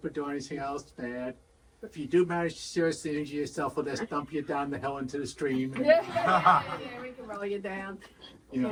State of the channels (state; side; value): identical; both; correlation 1.00